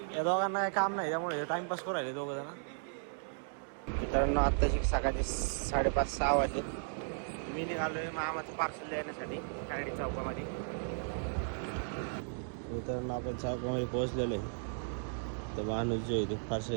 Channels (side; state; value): left; silent; digital silence